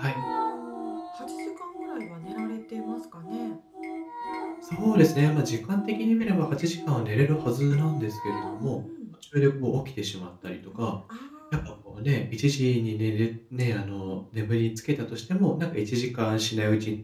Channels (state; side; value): identical; both; correlation 1.00